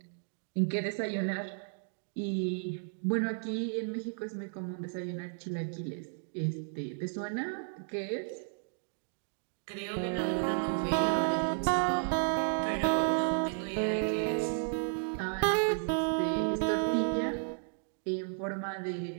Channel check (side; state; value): left; silent; digital silence